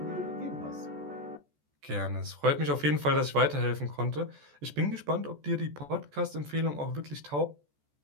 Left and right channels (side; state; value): left; late; 14 ms